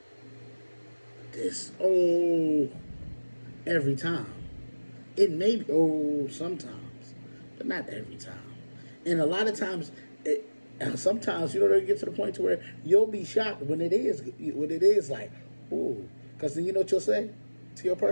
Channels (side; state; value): both; inverted; correlation -1.00